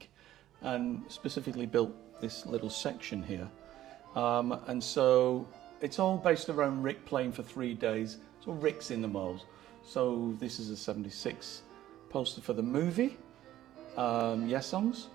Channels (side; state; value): left; quieter; 13.3 dB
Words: and specifically built this little section here. And so it's all based around Rick playing for 3 days. So Rick's in the mold. So this is a 76 poster for the movie, Yes Songs.